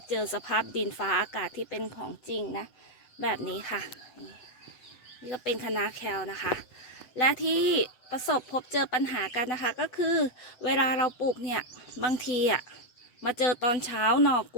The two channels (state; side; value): late; right; 7.9 ms